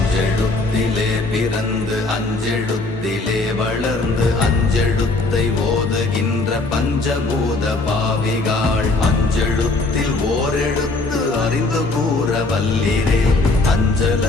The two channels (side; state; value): right; quieter; 3.2 dB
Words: பிறந்து அஞ்செழுத்திலே வளர்ந்து அஞ்செழுத்தை ஓதுகின்ற பஞ்சபூத பாவிகாள், அஞ்செழுத்தில் ஓரெழுத்து அறிந்து கூற வல்லிரே. அஞ்சல்